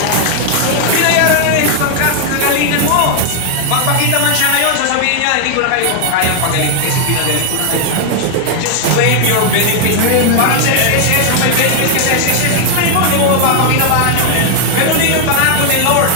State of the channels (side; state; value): both; different; correlation 0.00